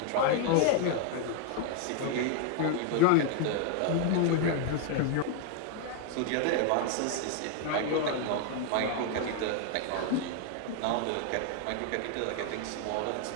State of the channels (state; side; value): different; both; correlation 0.00